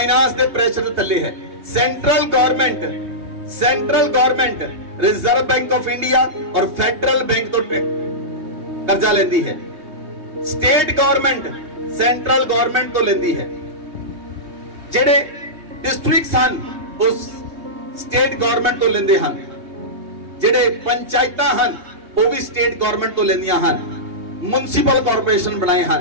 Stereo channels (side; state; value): left; late; 3.2 ms